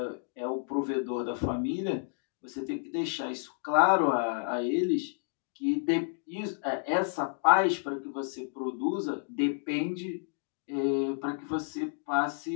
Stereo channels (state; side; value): silent; right; digital silence